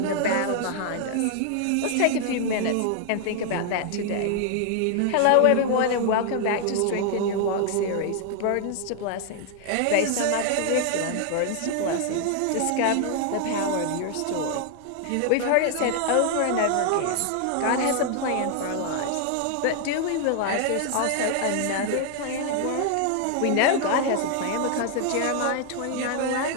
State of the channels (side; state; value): both; different; correlation 0.00